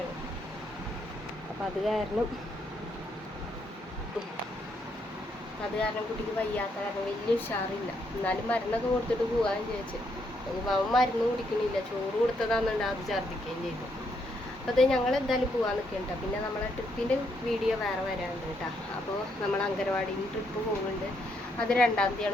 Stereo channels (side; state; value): both; normal; correlation 0.75